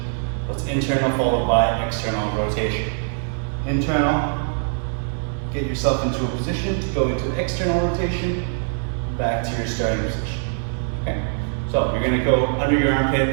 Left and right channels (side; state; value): left; silent; digital silence